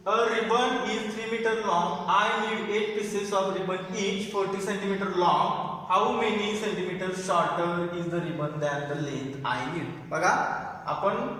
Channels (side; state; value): both; identical; correlation 1.00